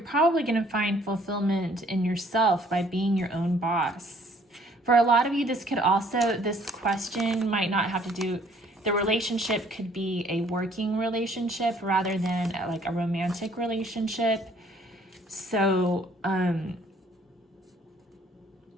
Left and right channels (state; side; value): normal; both; correlation 0.60